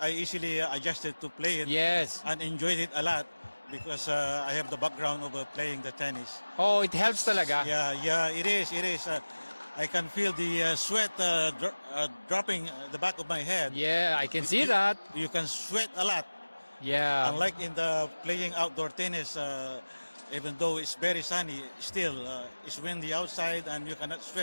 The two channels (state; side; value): inverted; both; correlation -1.00